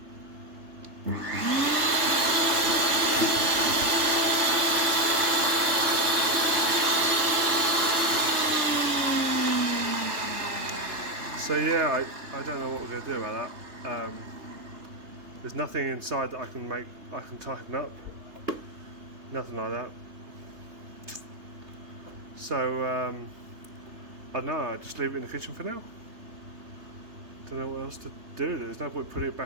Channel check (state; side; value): late; left; 3.3 ms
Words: So yeah, I don't know what we're going to do about that. There's nothing inside that I can tighten up. Nothing like that. So I don't know, I just leave it in the kitchen for now. Don't know what else to do. There's no point putting it